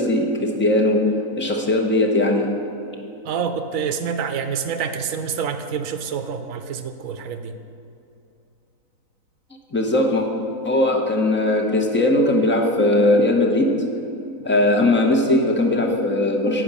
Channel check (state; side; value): late; left; 3.9 ms